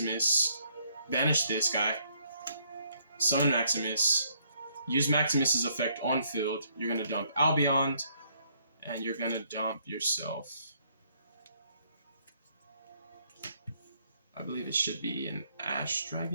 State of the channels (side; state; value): both; inverted; correlation -0.68